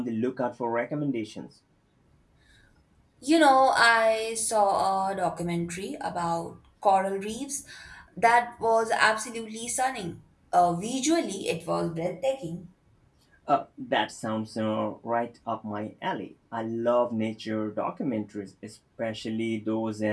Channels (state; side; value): identical; both; correlation 1.00